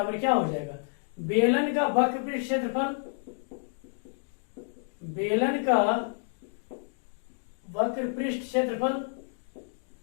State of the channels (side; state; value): right; silent; digital silence